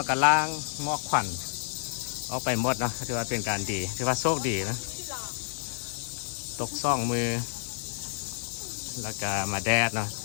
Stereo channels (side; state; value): right; silent; digital silence